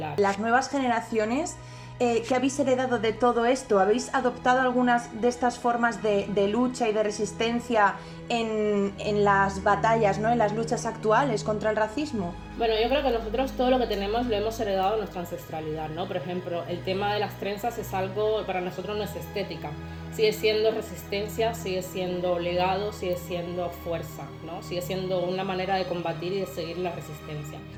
Las nuevas generaciones, ¿qué habéis heredado de todo esto? ¿Habéis adoptado algunas de estas formas de lucha y de resistencia en las batallas, ¿no?, en las luchas actuales contra el racismo? Bueno, yo creo que nosotros todo lo que tenemos lo hemos heredado de nuestra ancestralidad, ¿no? Por ejemplo, el tema de las trenzas es algo, para nosotros no es estética. Sigue siendo resistencia, sigue siendo legado, sigue siendo fuerza, ¿no? Sigue siendo una manera de combatir y de seguir la resistencia.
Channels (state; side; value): identical; both; correlation 1.00